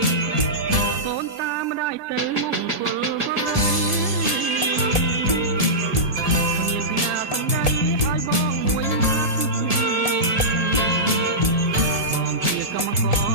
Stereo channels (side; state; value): left; late; 1.7 ms